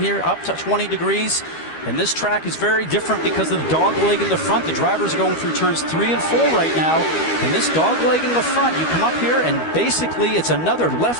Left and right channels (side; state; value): right; late; 12 ms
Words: here, up to 20 degrees. And this track is very different because of the dog leg in the front. The drivers are going through turns 3 and 4 right now. And this dog leg in the front, you come up here and basically it's another